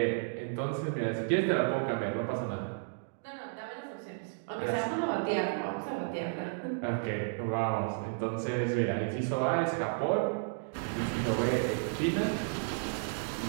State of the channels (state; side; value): silent; left; digital silence